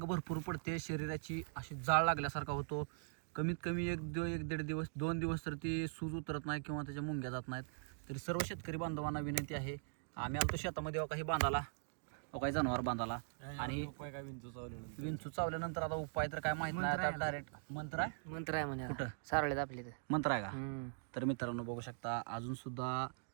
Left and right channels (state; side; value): silent; left; digital silence